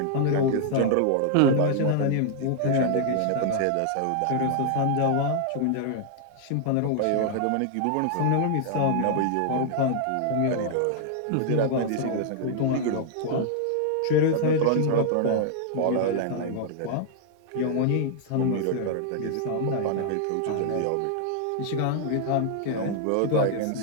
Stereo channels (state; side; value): different; both; correlation 0.00